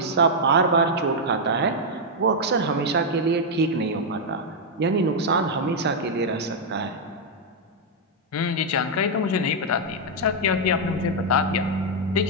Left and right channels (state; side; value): normal; both; correlation -0.02